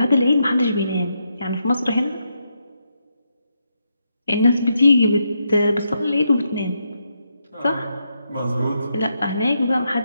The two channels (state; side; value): inverted; both; correlation -0.81